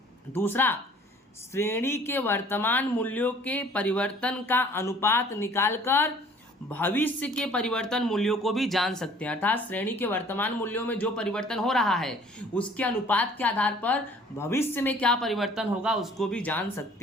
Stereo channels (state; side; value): normal; both; correlation 0.53